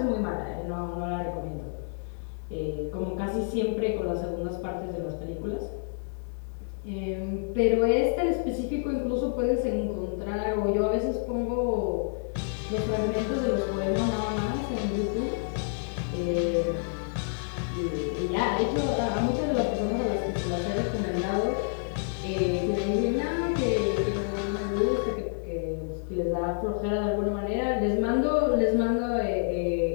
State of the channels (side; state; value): right; silent; digital silence